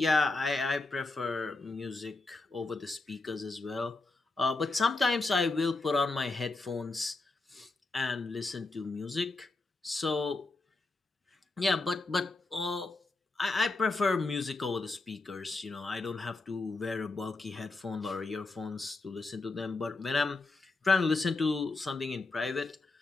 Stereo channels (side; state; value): right; quieter; 3.4 dB